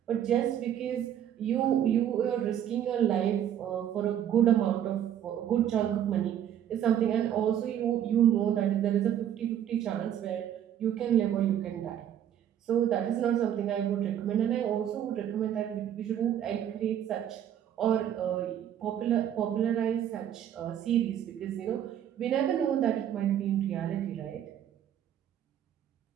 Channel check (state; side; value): quieter; left; 10.2 dB